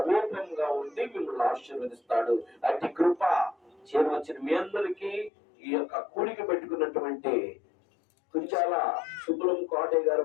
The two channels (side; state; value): right; drops out; at 5.3 s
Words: ఉండి మిమ్మల్ని ఆశీర్వదిస్తాడు. అట్టి కృప చేరవచ్చిన మీ అందరికీ ఈ యొక్క కూడిక పెట్టుకున్నటువంటి కుంచాల సుబ్బులం కోటయ్య గారు